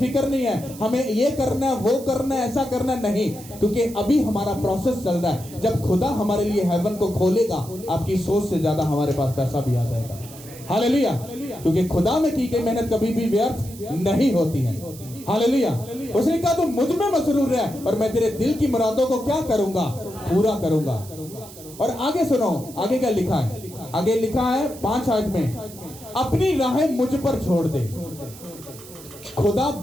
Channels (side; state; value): right; noise; hiss, 17 dB below the sound